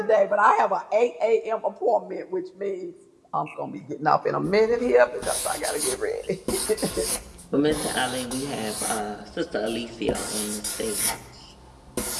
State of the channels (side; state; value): both; identical; correlation 1.00